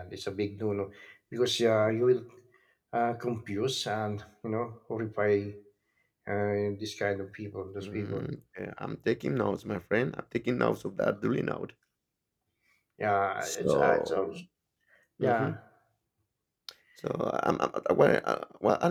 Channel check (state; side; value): identical; both; correlation 1.00